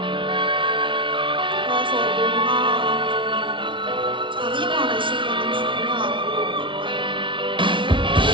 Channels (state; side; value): late; left; 0.24 ms